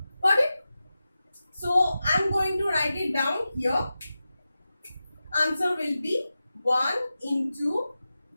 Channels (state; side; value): inverted; both; correlation -0.93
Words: Got it? So I am going to write it down here. Answer will be 1 into